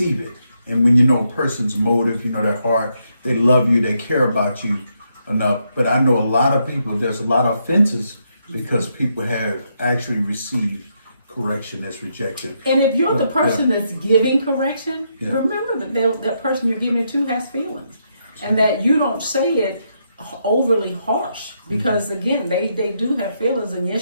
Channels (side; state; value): both; inverted; correlation -0.79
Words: it. And when you know a person's motive, you know their heart, they love you, they care about you enough. But I know a lot of people, there's a lot of offenses because people have actually received correction as rejection. And if you're the person that's giving correction, remember that that person you're giving it to has feelings, and that you don't say it overly harsh, because again, they do have feelings, and